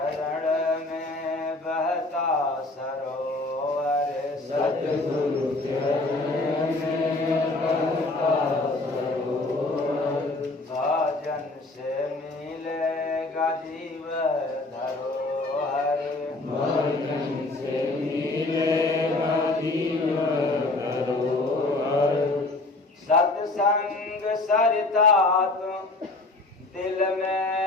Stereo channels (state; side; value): quieter; right; 3.0 dB